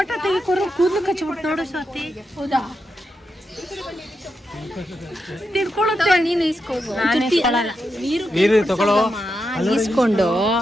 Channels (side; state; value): both; normal; correlation 0.86